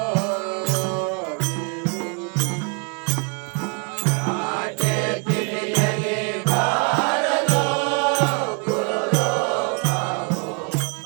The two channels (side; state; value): left; quieter; 35.7 dB